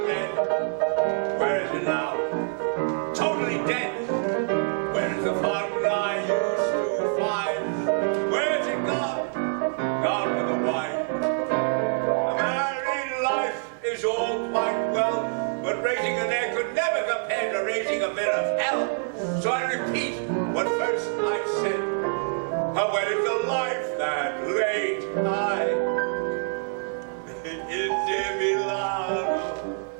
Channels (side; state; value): left; silent; digital silence